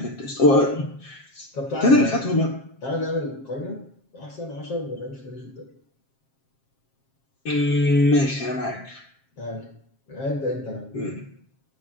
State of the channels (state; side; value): late; right; 7.5 ms